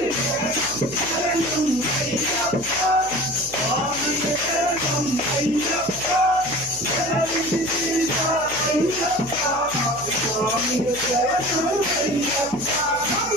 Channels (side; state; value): left; noise; hum, 20 dB below the sound